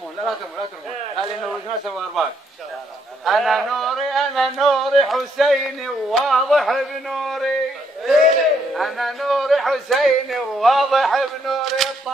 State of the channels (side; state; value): both; normal; correlation 0.73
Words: لا ترمون هذه نور ناس وارباك. أنا نوري حسيني وواضح بنوري، أنا نوري حسيني وواضح بنوري.